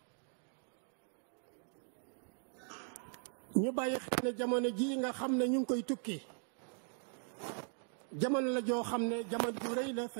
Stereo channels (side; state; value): left; silent; 52 dB below the other